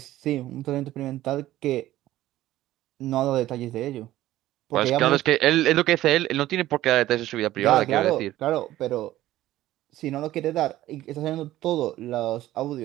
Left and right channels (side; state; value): left; quieter; 14.8 dB